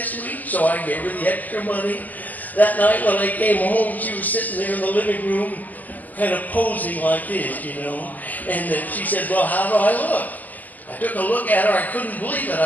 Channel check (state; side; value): late; right; 0.081 ms